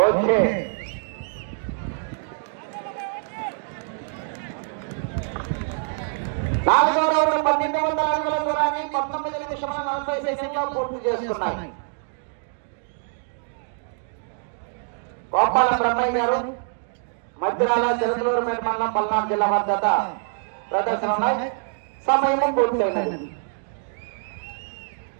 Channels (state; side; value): silent; left; 62 dB below the other